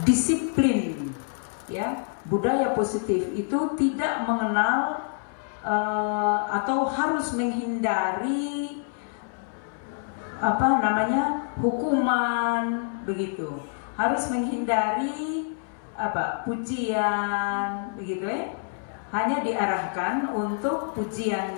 disiplin, ya, budaya positif itu tidak mengenal atau harus menghindari hukuman, begitu. Harus menghindari pujian, begitu ya. Hanya diarahkan untuk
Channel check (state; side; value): silent; right; 60 dB below the other